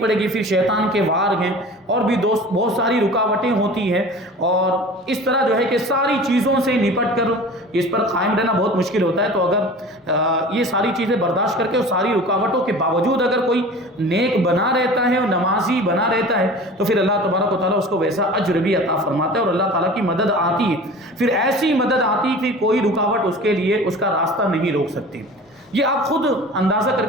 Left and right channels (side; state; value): both; normal; correlation 0.39